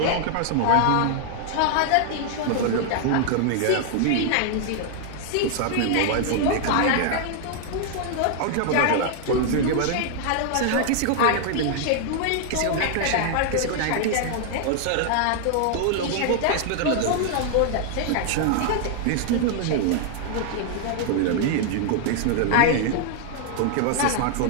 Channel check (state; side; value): different; both; correlation 0.00